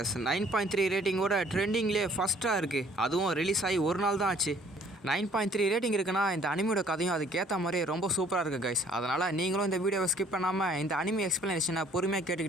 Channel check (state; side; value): normal; both; correlation 0.58